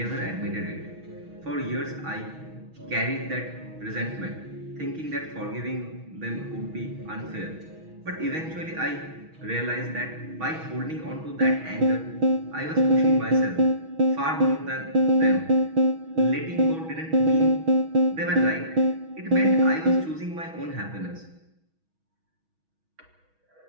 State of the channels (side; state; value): left; late; 6.2 ms